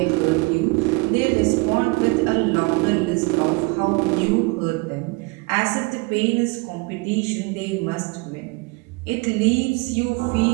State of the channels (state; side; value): quieter; left; 27.1 dB